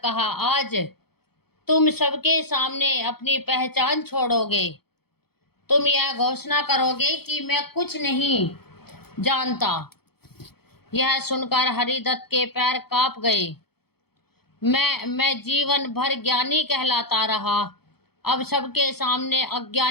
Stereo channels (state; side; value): late; right; 0.96 ms